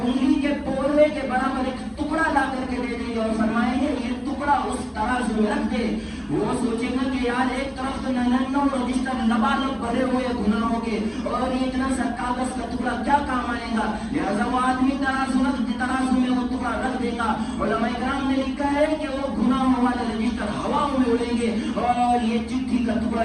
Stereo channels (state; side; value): identical; both; correlation 1.00